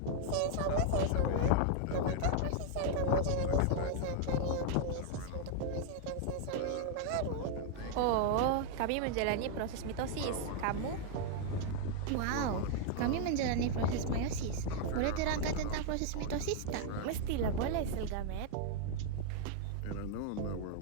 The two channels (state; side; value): different; both; correlation 0.00